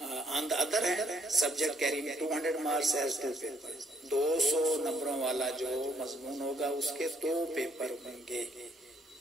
On the other hand subject carrying 200 marks as 2 paper, 200 نمبروں والا جو مضمون ہوگا اس کے 2 پیپر ہوں گے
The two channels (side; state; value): both; normal; correlation 0.68